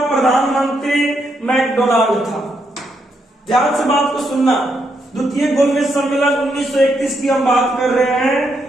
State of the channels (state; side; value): normal; both; correlation 0.79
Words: प्रधानमंत्री मैकडोनाल्ड था। ध्यान से बात को सुनना। द्वितीय गोलमेज सम्मेलन 1931 की हम बात कर रहे हैं,